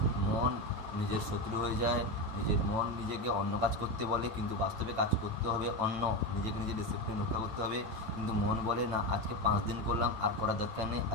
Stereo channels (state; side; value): late; left; 8.9 ms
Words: মন নিজের শত্রু হয়ে যায়। নিজের মন নিজেকে অন্য কাজ করতে বলে, কিন্তু বাস্তবে কাজ করতে হবে অন্য। নিজেকে নিজে ডিসিপ্লিন রক্ষা করতে হবে, কিন্তু মন বলে না, আজকে 5 দিন করলাম, আর করার দরকার নেই,